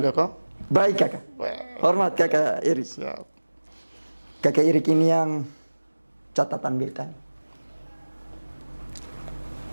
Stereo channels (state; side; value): inverted; both; correlation -1.00